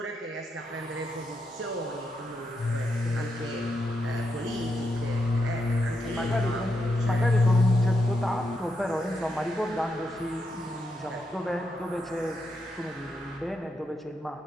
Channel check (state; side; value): normal; both; correlation 0.83